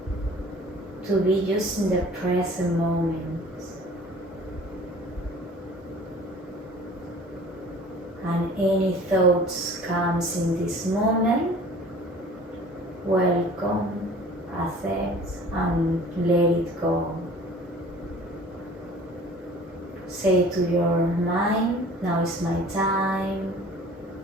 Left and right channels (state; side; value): normal; both; correlation 0.47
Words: to be just in the present moment. And any thoughts comes in this moment, welcome, accept, and let it go. Say to your mind, now is my time.